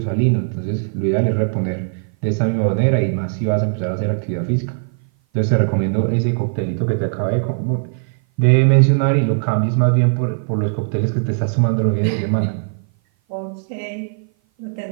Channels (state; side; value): silent; left; 56 dB below the other